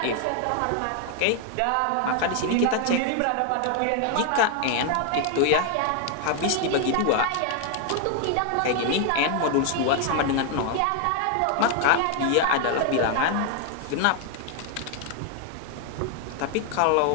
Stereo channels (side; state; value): both; different; correlation 0.00